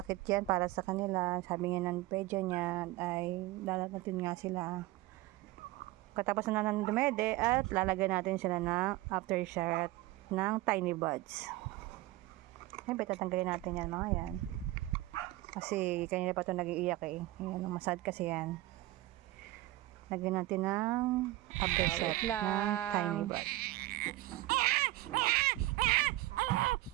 yan para sa kanila. Sabi niya ng pedyo niya ay lalagatin nga sila. Katapos na ng dumede at lalagyan natin sila ng aftershot ng tiny buds. Siyempre, tatanggalin natin yan mga yan. Kasi kanina pa ito nag-iiyak eh. Ayan, masad kasi yan. Lagyan natin ng aftershot ng tiny buds.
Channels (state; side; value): quieter; left; 17.8 dB